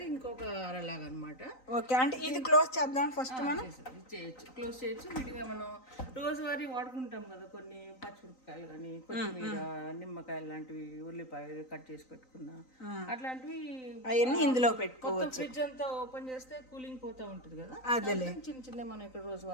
ఇంకొక అరలాగా అనమాట. ఓకే, అంటే ఇది క్లోజ్ చేద్దాం ఫస్ట్. మనం క్లోజ్ చేయొచ్చు. విడిగా మనం రోజువారీ వాడుకుంటాం కదా, కొన్ని పచ్చిమిరపకాయలు కానీ, కొత్తిమీర, నిమ్మకాయలు లాంటివి, ఉల్లిపాయలు కట్ చేసి పెట్టుకున్నా అట్లాంటివి అవన్నీ ఇందులో పెట్టుకోవచ్చు. ఫ్రిడ్జ్ అంతా ఓపెన్ చేస్తే కూలింగ్ పోతా ఉంటుంది కదా, అదే చిన్న మనం ఇక్కడ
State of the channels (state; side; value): late; right; 3.9 ms